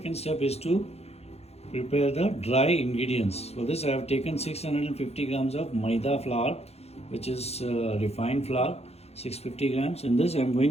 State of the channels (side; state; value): right; late; 0.30 ms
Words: step is to prepare the dry ingredients. For this I have taken 650 grams of Maida flour, which is refined flour, 650 grams. In this I am